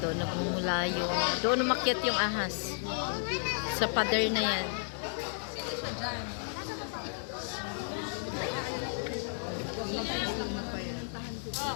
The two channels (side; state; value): right; silent; 56 dB below the other